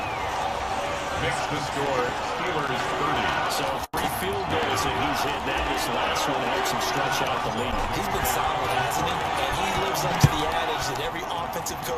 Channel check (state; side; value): identical; both; correlation 1.00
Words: Makes the score Steelers 30. So 3 field goals that he's hit. Now this last one helps him stretch out the lead. He's been solid, hasn't he? And he lives up to the adage that every offensive